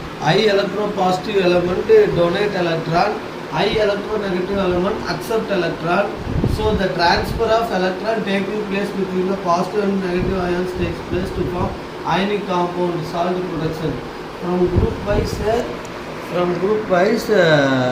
High electropositive element donate electron, high electronegative element accept electron. So the transfer of electron taking place between the positive and negative ions takes place to form ionic compound, salt production. From group wise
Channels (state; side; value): identical; both; correlation 1.00